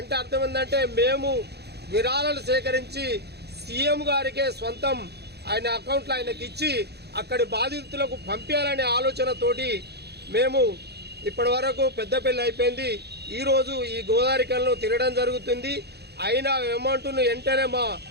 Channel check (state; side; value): late; left; 0.48 ms